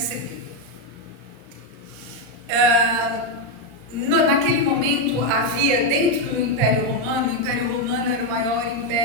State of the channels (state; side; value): late; left; 34 ms